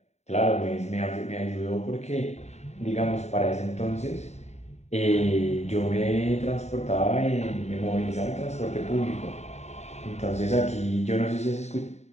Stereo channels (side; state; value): right; late; 0.32 ms